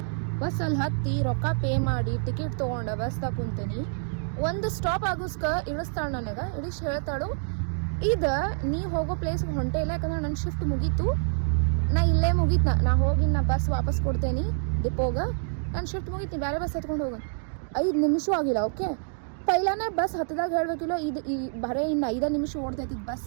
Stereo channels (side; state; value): left; silent; digital silence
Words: ಬಸ್ ಅಲ್ಲಿ ಹತ್ತಿ ರೊಕ್ಕ ಪೇ ಮಾಡಿ ಟಿಕೆಟ್ ತೊಗೊಂಡು ಬಸ್ದಾಗ ಕುಂತೀನಿ. ಒಂದು ಸ್ಟಾಪ್ ಆಗೋಸ್ಕ ಇಳಿಸ್ತಾಳೆ ನನಗೆ. ಇಳಿಸಿ ಹೇಳ್ತಾಳು, ಇದು ನೀ ಹೋಗೋ ಪ್ಲೇಸ್ಗೆ ಹೊಂಟೆ ಇಲ್ಲ, ಯಾಕಂದ್ರೆ ನನ್ನ ಶಿಫ್ಟ್ ಮುಗೀತು, ನಾ ಇಲ್ಲೇ ಮುಗೀತು, ನಾ ಹೋಗಿ ನಾ ಬಸ್ ವಾಪಸ್ ಕೊಡ್ತೇನೆ ಡಿಪೋಗ, ನಾನು ಶಿಫ್ಟ್ ಮುಗೀತೀನಿ, ಬೇರೆ ಬಸ್ ಹತ್ಕೊಂಡು ಹೋಗೋಣ. 5 ನಿಮಿಷ ಆಗಿಲ್ಲ. ಓಕೆ, ಪೈಲಾನೇ ಬಸ್ ಹತ್ತದಾಗ ಹೇಳ್ಬೇಕಿಲ್ಲ, ಇದು ಈ ಬರೀ ಇನ್ನು 5 ನಿಮಿಷ ಓಡ್ತೈತಿ